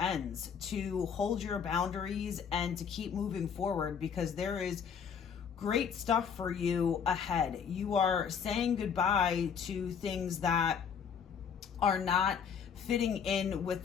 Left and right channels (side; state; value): right; quieter; 7.1 dB